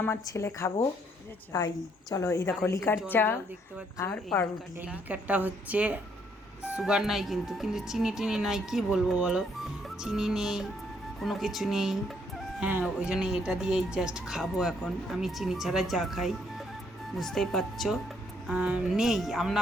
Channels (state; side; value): normal; both; correlation 0.70